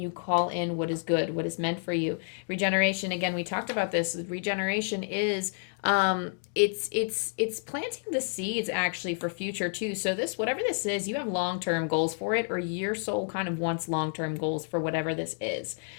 call in what is good, what is meant for you. Regeneration, again, we talked about this. Regeneration is it's planting the seeds actually for future too. So this, whatever this is, you have long-term goals for it, or your soul kind of wants long-term goals for whatever this is.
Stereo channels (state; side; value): silent; right; 58 dB below the other